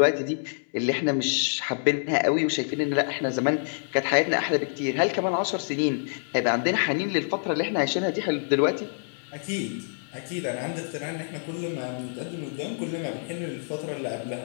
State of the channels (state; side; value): silent; right; 60 dB below the other